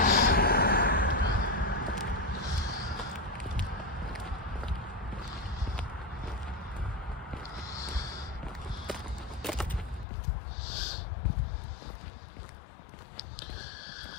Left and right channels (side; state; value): right; drops out; at 10.1 s